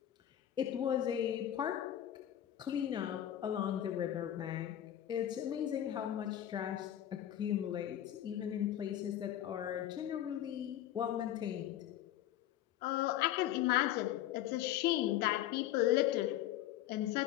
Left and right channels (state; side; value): quieter; right; 12.0 dB